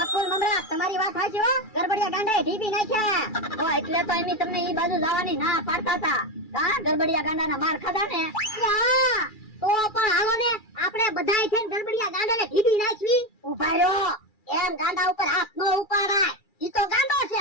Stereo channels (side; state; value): right; late; 2.3 ms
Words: મમરા તમારી વાત સાચી હો, ગરબડિયા ગાંડાએ ઢીબી નાખ્યા. ઓ એટલે તો એમી તમને ઈ બાજુ જવાની ના પાડતા હતા. કા ગરબડિયા ગાંડાના માર ખાધા ને. યા, તો પણ હાલો ને આપણે બધાય થઈને ગરબડિયા ગાંડાને ઢીબી નાખવી. ઉભા રહ્યો, એમ ગાંડા ઉપર હાથ નો ઉપાડાય. ઈ તો ગાંડો છે,